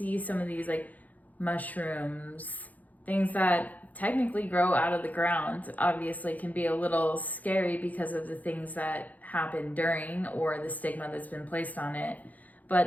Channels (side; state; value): right; late; 0.078 ms